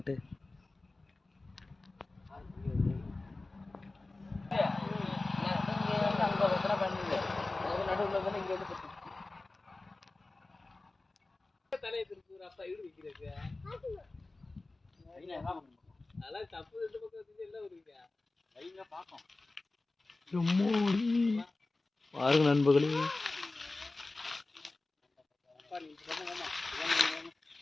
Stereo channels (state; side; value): quieter; right; 3.2 dB